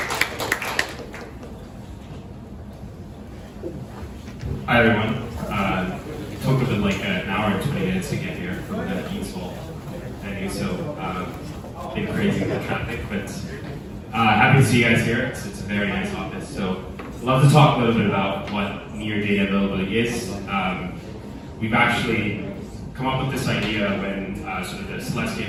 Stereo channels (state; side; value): identical; both; correlation 1.00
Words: Hi everyone. It took a bit like an hour and 20 minutes to get here from the Eastwall venue, so been crazy with the traffic, but happy to see you guys here. It's a very nice office. So I'd love to talk a little bit about what near data availability is. We've actually come up with this idea when sort of the